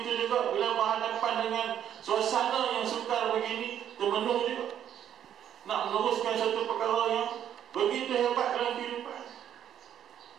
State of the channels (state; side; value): quieter; left; 10.0 dB